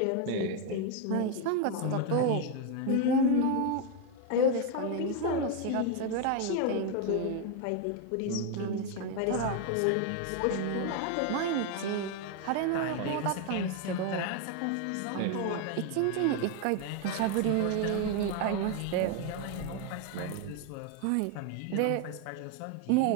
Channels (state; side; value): different; both; correlation 0.01